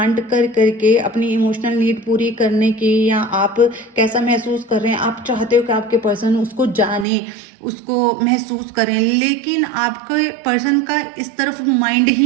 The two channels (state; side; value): drops out; left; at 7.1 s